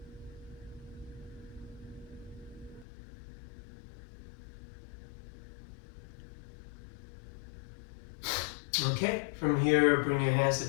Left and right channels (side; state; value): right; drops out; at 2.9 s